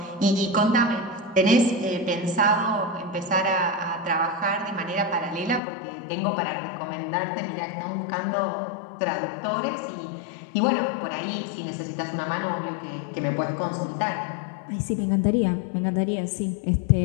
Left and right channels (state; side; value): drops out; right; at 5.6 s